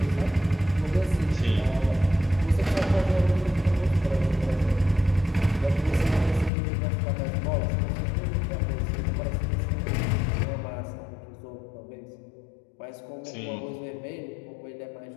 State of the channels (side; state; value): right; drops out; at 6.5 s